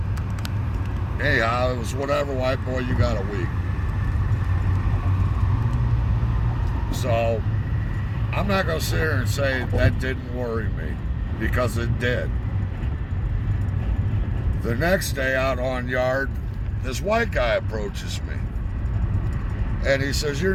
anyhow, it was whatever, white boy, you got a week. So I'm not going to sit here and say that didn't worry me, because it did. The next day out on yard, this white guy approaches me. And he says, your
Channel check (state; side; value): identical; both; correlation 1.00